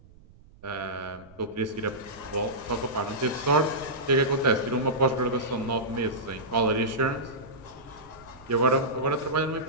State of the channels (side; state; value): right; noise; rumble, 24 dB below the sound